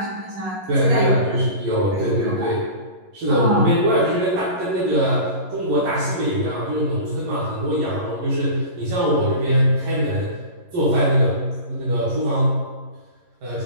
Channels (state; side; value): late; left; 11 ms